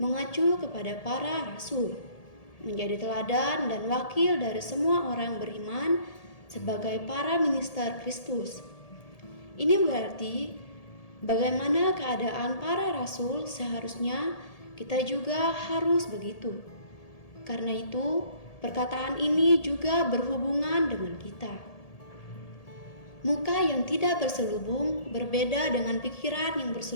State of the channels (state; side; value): late; right; 1.8 ms